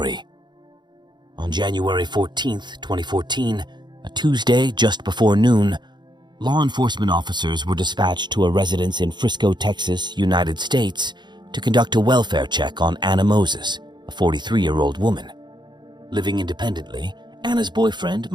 On January 14th, 2014, a Tuesday just before noon, law enforcement officers were dispatched to a residence in Frisco, Texas, United States, to conduct a welfare check on Anna Moses, a 43-year-old woman. Living independently, Anna's boyfriend,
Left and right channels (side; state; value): left; late; 0.21 ms